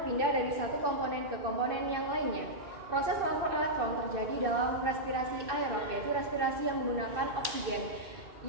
dari satu komponen ke komponen yang lainnya. Proses transfer elektron terjadi dalam respirasi aerob, yaitu respirasi yang menggunakan oksigen,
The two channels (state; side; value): late; left; 2.4 ms